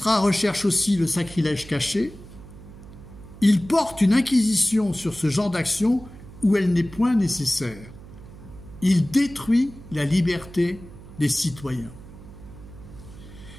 recherche aussi le sacrilège caché, il porte une inquisition sur ce genre d'action où elle n'est point nécessaire. Il détruit la liberté des citoyens.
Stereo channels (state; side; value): noise; right; hum, 17 dB below the sound